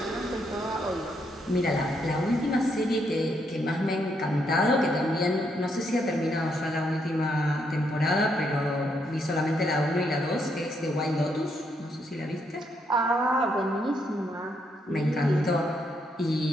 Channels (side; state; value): both; normal; correlation 0.76